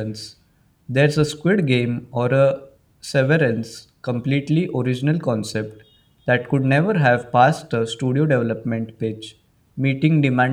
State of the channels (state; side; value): identical; both; correlation 1.00